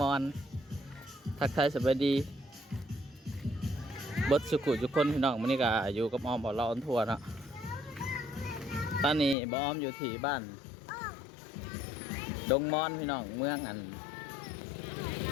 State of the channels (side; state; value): right; drops out; at 9.3 s